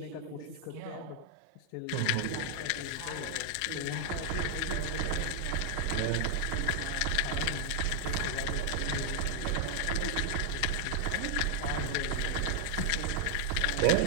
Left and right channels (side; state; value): both; different; correlation 0.00